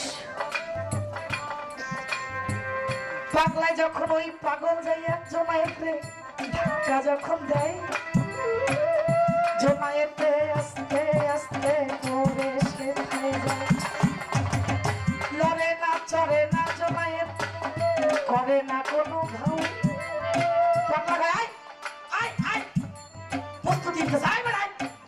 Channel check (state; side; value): identical; both; correlation 1.00